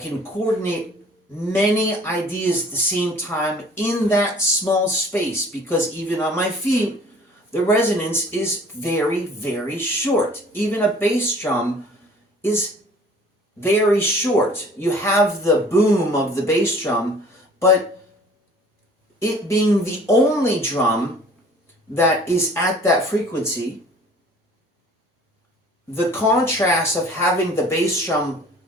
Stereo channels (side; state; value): both; normal; correlation 0.50